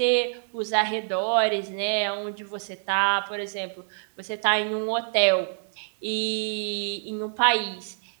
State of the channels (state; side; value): silent; left; 61 dB below the other